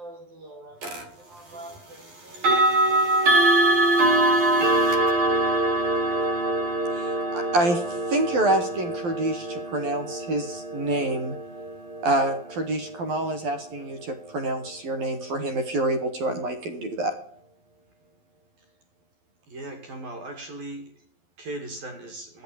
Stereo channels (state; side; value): late; left; 12 ms